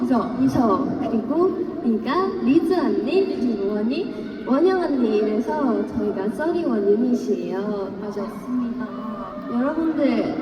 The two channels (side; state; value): both; identical; correlation 1.00